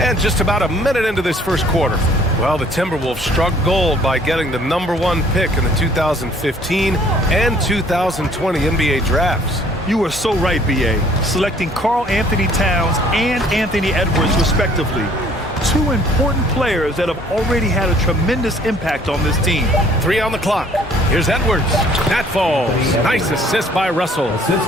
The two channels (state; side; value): normal; both; correlation 0.58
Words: just about a minute into this first quarter. Well, the Timberwolves struck gold by getting the #1 pick in the 2015 and 2020 NBA drafts. You are so right, B.A. Selecting Karl Anthony Towns and Anthony Edwards, respectively. Two important players that have already had a tremendous impact on this team. 3 on the clock. Here's Edwards. That falls. Nice assist by Russell.